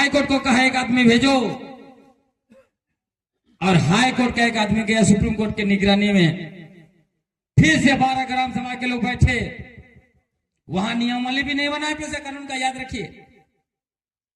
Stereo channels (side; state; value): both; identical; correlation 1.00